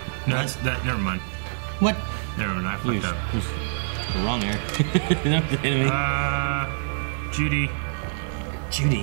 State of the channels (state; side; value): silent; left; digital silence